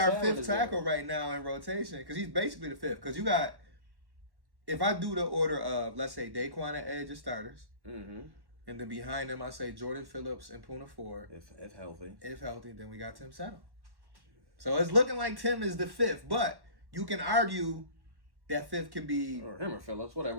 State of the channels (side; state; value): left; late; 1.1 ms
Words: fifth tackle right now in rotation, because he's basically the fifth. Because you got, if I do the order of, let's say Daquan at edge as starters. Mm-hmm. And then behind him, I say Jordan Phillips and Puna Ford. If healthy. If healthy, then we got Tim Settle. So it's looking like Tim is the fifth, but you can argue that fifth can be or him or Phillips, whatever.